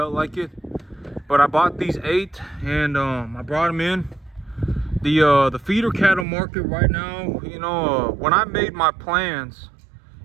like it, but I bought these 8 and I brought them in. The feeder cattle market right now, you know, when I made my plans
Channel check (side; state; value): left; drops out; at 6.2 s